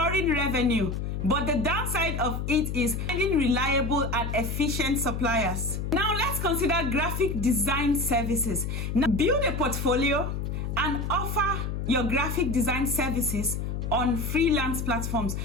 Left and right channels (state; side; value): noise; left; hum, 3 dB below the sound